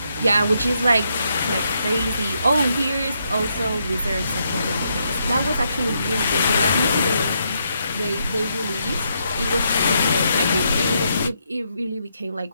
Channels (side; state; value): both; inverted; correlation -0.78